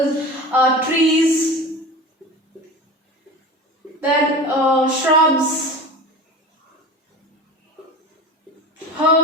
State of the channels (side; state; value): both; normal; correlation 0.33